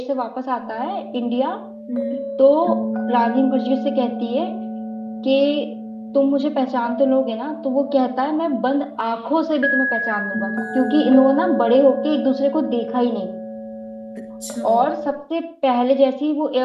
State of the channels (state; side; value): identical; both; correlation 1.00